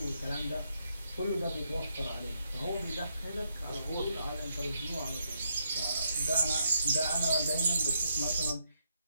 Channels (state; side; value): inverted; both; correlation -0.77